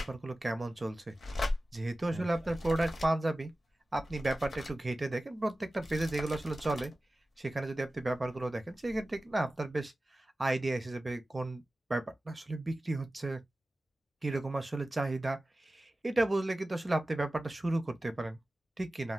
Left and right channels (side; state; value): both; normal; correlation 0.96